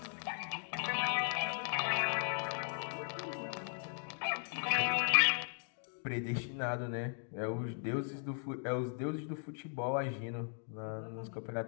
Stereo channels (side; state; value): right; silent; 53 dB below the other